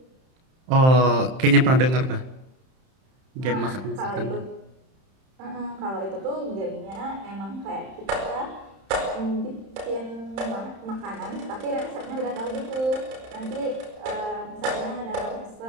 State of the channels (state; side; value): late; left; 31 ms